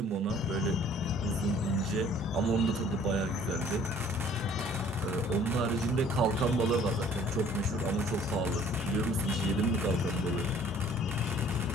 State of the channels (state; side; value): normal; both; correlation 0.55